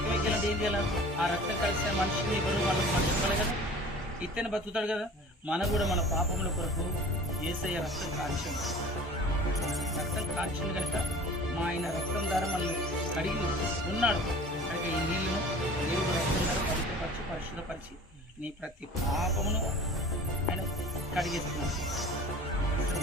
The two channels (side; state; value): both; normal; correlation 0.43